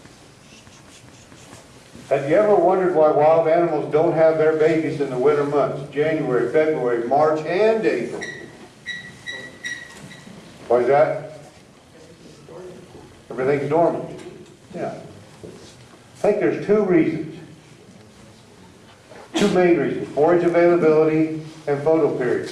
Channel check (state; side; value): identical; both; correlation 1.00